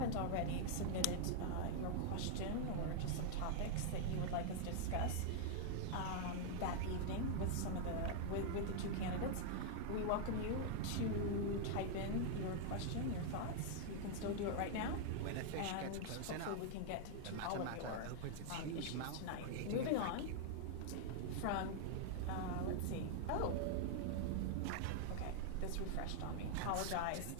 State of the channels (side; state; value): both; different; correlation 0.00